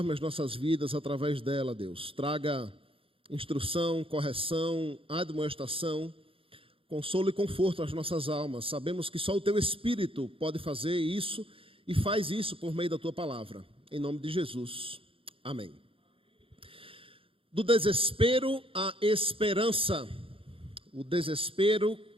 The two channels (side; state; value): left; late; 0.26 ms